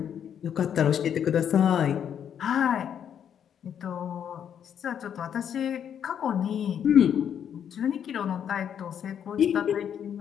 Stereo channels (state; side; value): quieter; right; 8.7 dB